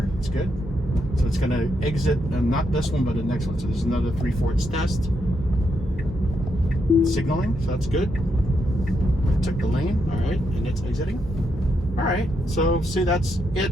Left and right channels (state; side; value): normal; both; correlation 0.80